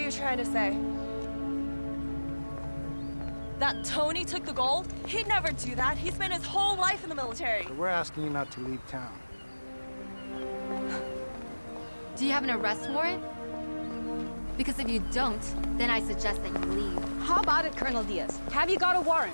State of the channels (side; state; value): both; inverted; correlation -1.00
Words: trying to say? That Tony took the gold? He'd never do that. He spent his whole life in the military. But we're asking you not to leave town. Do you have an arrest warrant? Because if you don't, then I suggest that you leave. How about it, Colonel Diaz? Have you got a